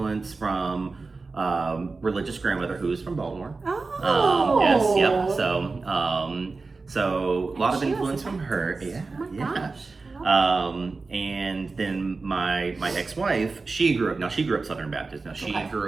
from religious grandmother who was from Baltimore. Oh. Yes, yep. So a lot of She was influence a from her. Baptist. Yeah, Oh my yeah. gosh. And then my ex-wife, she grew up Southern Baptist. Now she Okay.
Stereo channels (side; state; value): left; quieter; 4.0 dB